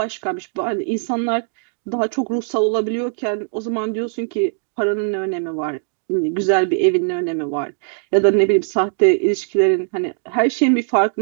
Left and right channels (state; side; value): silent; left; 63 dB below the other